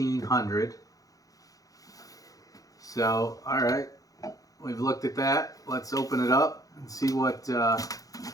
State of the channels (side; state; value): right; late; 0.17 ms